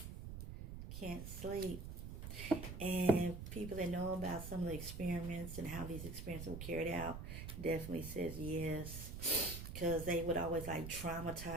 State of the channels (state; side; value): noise; right; rumble, 8 dB below the sound